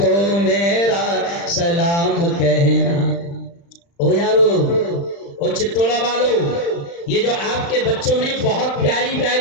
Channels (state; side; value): late; right; 35 ms